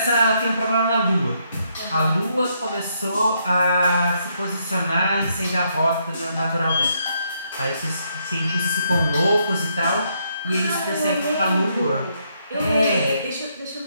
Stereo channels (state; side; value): inverted; both; correlation -0.75